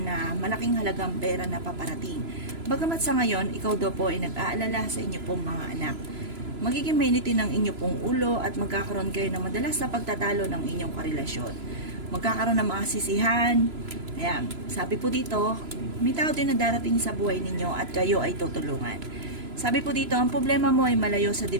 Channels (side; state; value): left; late; 3.0 ms